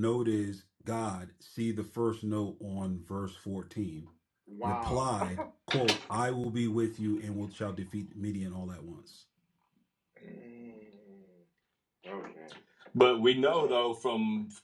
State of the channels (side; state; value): both; identical; correlation 1.00